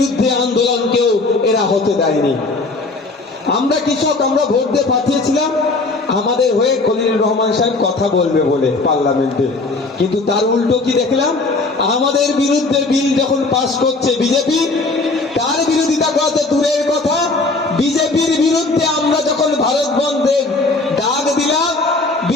আন্দোলনকেও এরা হতে দেয়নি। আমরা কৃষক, আমরা ভোট দিয়ে পাঠিয়েছিলাম আমাদের হয়ে খলিলুর রহমান সাহেব কথা বলবে বলে পার্লামেন্টে, কিন্তু তার উল্টো কি দেখলাম, আমাদের বিরুদ্ধে বিল যখন পাস করছে বিজেপি, তার বিরোধিতা করা তো দূরের কথা, বিজেপির বিরুদ্ধে আমরা যখন ভারত বন্ধের ডাক দিলাম,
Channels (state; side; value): quieter; right; 3.4 dB